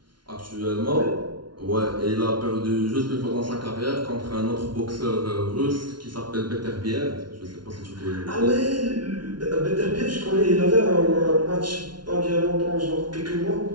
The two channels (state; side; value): late; left; 0.71 ms